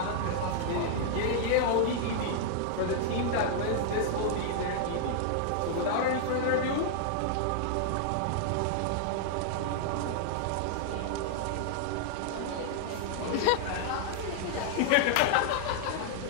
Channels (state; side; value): different; both; correlation -0.01